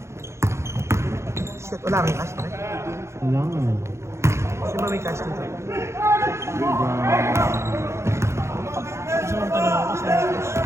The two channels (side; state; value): left; late; 0.13 ms